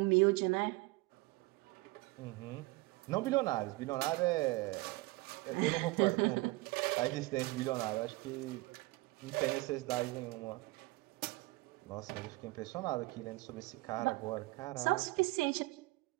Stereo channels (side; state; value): left; quieter; 22.5 dB